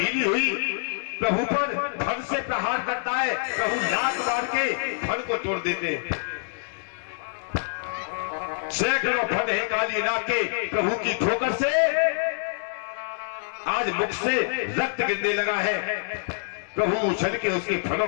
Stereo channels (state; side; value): silent; right; digital silence